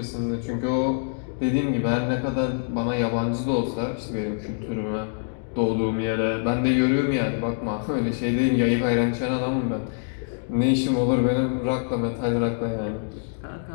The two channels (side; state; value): right; silent; digital silence